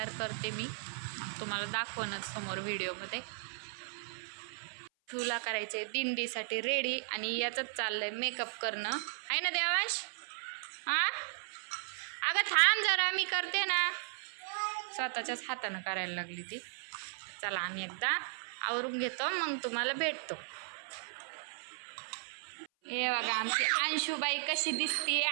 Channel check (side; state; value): left; silent; 54 dB below the other